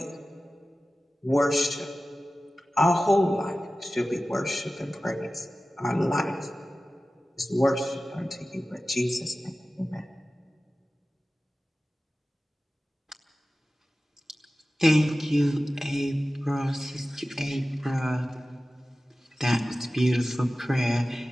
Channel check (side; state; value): both; normal; correlation 0.95